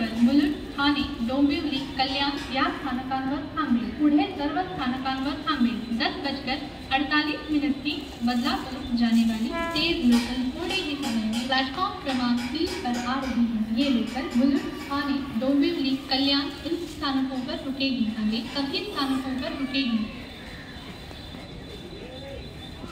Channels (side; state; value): both; identical; correlation 1.00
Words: मुलुंड, ठाणे, डोंबिवली, कल्याण या स्थानकांवर थांबेल। पुढे सर्व स्थानकांवर थांबेल। 10:48 की बदलापुर जाने वाली तेज लोकल थोड़े ही समय में प्लेटफॉर्म क्रमांक 3 पर आ रही है। ये लोकल मुलुंड, ठाणे, डोंबिवली, कल्याण इन स्थानकों पर रुकेगी। आगे सभी स्थानकों पर रुकेगी।